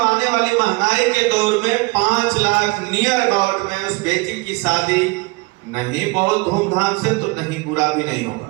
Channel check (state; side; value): quieter; left; 25.3 dB